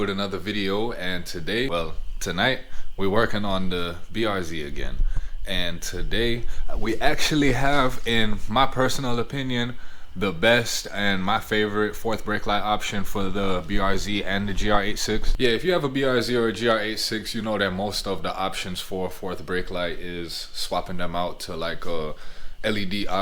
another video, and tonight we're working on the BRZ again. And today we actually have, in my personal opinion, the best and my favorite fourth brake light option for the BRZ and the GR86. Yeah, if you have a BRZ or a GR86, you know that most of the options for fourth brake light is swapping them out to like a LED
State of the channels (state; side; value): identical; both; correlation 1.00